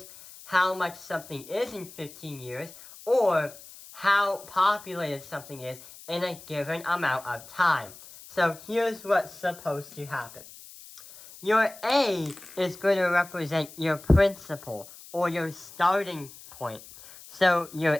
how much something is in 15 years, or how populated something is in a given amount of time. So here's what's supposed to happen. Your A is going to represent your principal, or your starting point. So your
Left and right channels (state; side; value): noise; left; hiss, 18 dB below the sound